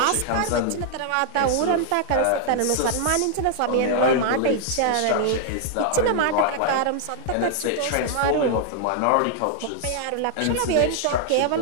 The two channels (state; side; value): different; both; correlation 0.00